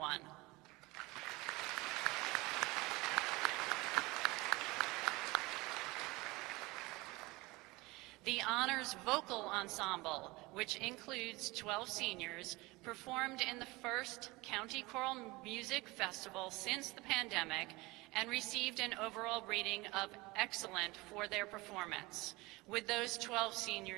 The Honors Vocal Ensemble, which includes 12 seniors, performed in the first County Choral Music Festival since the pandemic and received an overall rating of excellent for their performance. Would those 12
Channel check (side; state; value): left; quieter; 22.6 dB